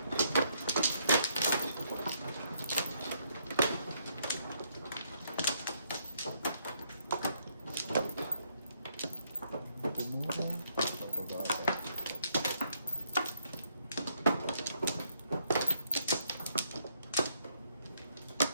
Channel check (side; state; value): both; inverted; correlation -0.72